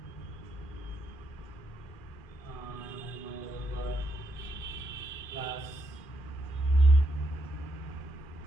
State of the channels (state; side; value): late; right; 2.4 ms